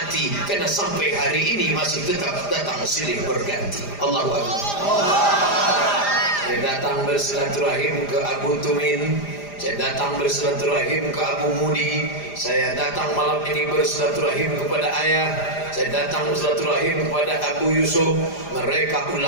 karena sampai hari ini masih tetap datang silih berganti. Allahu Akbar. Saya datang bersilaturahim ke Abu Tumin, saya datang bersilaturahim ke Abu Mudi, saya datang malam ini bersilaturahim kepada ayah, saya datang bersilaturahim kepada Abu Yusuf. Mereka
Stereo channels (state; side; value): late; right; 4.9 ms